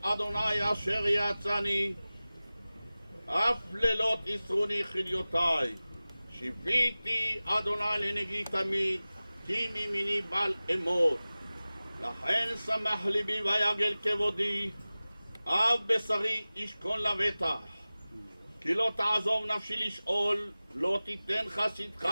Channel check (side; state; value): both; inverted; correlation -0.98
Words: אדוני אשר יעצני, אף לילות יסרוני חיליותיי. שיביתי אדוני לנגי תמיד, כי מימיני בל אמות. לכן שמח ליבי ויגל כבודי, אב בשרי ישכון לבטח. כי לא תעזוב נפשי לשאול, לא תיתן חסידך